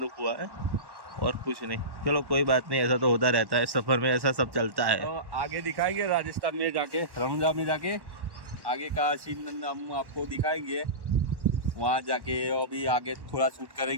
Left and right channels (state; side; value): late; left; 1.1 ms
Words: दुख हुआ है और कुछ नहीं. चलो कोई बात नहीं, ऐसा तो होता रहता है सफर में, ऐसा सब चलता है. तो आगे दिखाएंगे राजस्थान में जाके, रनुजा में जाके आगे का सीन हम आपको दिखाएंगे. वहाँ जाके अभी आगे थोड़ा शूट